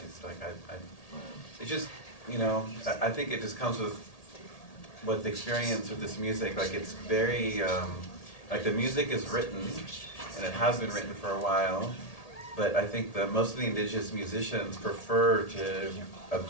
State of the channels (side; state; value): right; late; 1.8 ms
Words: Like it's just, I think it just comes with the experience of this music. Like it's very, like the music is written, and it has been written for a while, but I think that most of the indigenous musicians prefer to